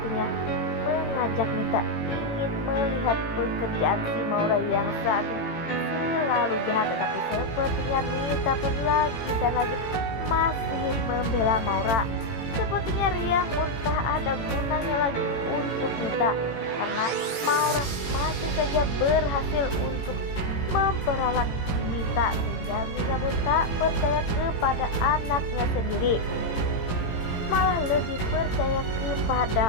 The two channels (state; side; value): late; right; 18 ms